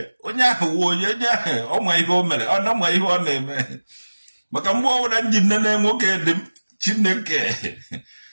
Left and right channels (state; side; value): inverted; both; correlation -1.00